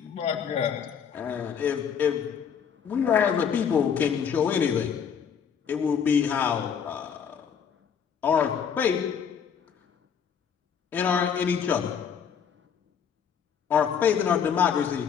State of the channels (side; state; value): right; quieter; 7.4 dB